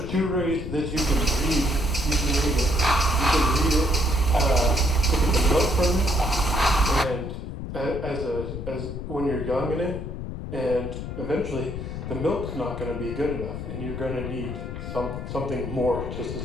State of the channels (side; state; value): left; noise; rumble, 7 dB below the sound